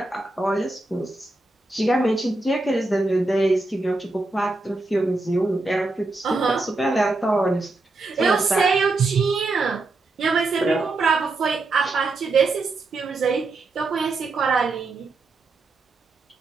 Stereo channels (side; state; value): left; quieter; 3.2 dB